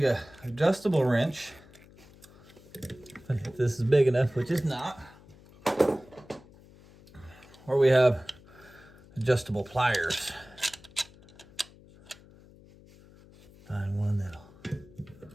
a adjustable wrench, if this is big enough, which is not, or we have adjustable pliers. Find one that'll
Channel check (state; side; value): noise; left; hum, 23 dB below the sound